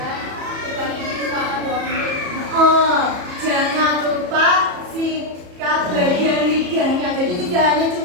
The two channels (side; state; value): left; late; 34 ms